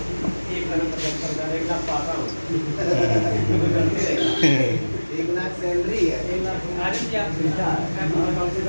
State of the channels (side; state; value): both; inverted; correlation -1.00